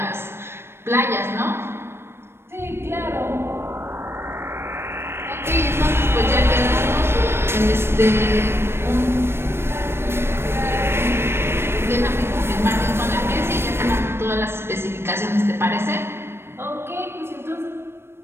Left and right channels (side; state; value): left; late; 0.12 ms